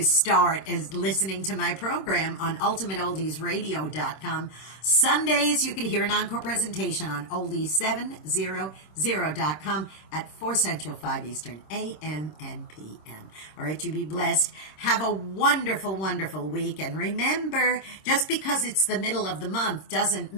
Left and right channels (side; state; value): right; late; 26 ms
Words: start, is listening to my program on ultimateoldiesradio.com. Sundays, you could hear an encore presentation on oldies700.com at 4 Central, 5 Eastern, a.m. and p.m. All right, you be blessed. Have a wonderful, wonderful week. And remember, just because it's the middle of the month doesn't